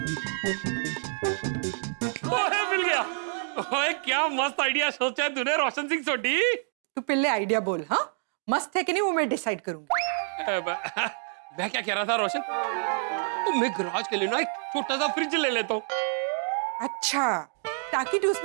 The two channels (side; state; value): left; silent; 55 dB below the other